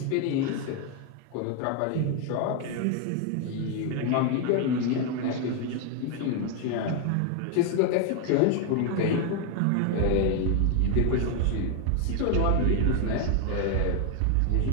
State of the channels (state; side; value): different; both; correlation 0.01